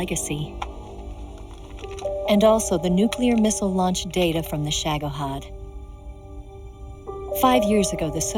and also the nuclear missile launch data from the Shagohod. 5 years ago, the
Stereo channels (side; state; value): both; identical; correlation 1.00